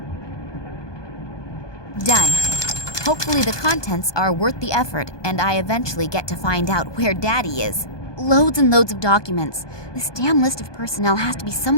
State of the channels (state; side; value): late; right; 1.2 ms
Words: Done. Hopefully the contents are worth the effort, and I eventually get to find out where Daddy is. Loads and loads of documents. This damn list of personnel has to be